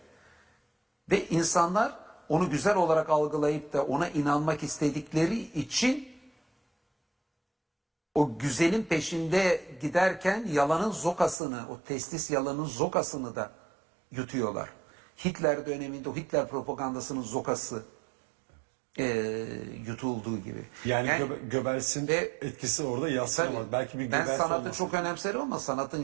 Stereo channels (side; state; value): left; drops out; at 11.4 s